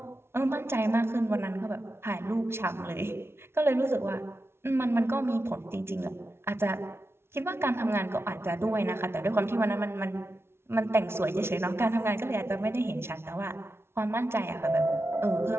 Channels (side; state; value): left; late; 0.12 ms